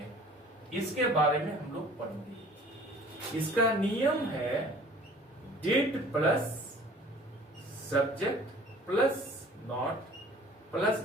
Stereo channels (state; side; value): normal; both; correlation 0.49